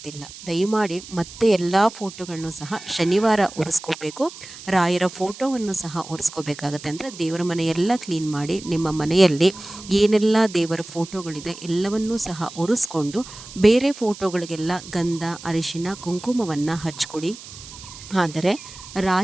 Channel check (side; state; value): right; noise; hiss, 15 dB below the sound